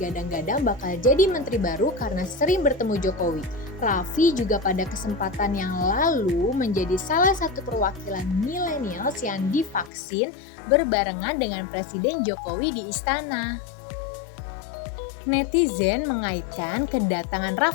bakal jadi menteri baru karena sering bertemu Jokowi. Raffi juga pada kesempatan yang lalu menjadi salah satu perwakilan millennials yang divaksin berbarengan dengan Presiden Jokowi di istana. Netizen mengaitkan kedatangan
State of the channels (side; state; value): right; drops out; at 9.9 s